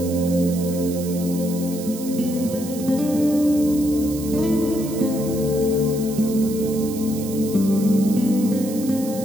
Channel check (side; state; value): right; noise; hiss, 13 dB below the sound